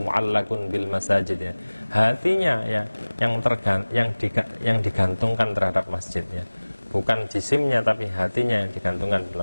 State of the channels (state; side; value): inverted; both; correlation -1.00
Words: mu'allaqun bil masajid ya, hatinya ya yang digantungkan terhadap masjid ya, bukan jisimnya tapi hatinya yang digantungkan